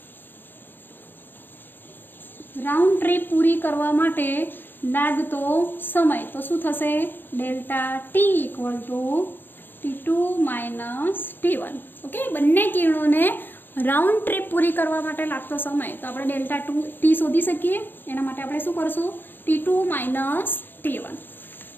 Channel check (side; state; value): right; late; 0.095 ms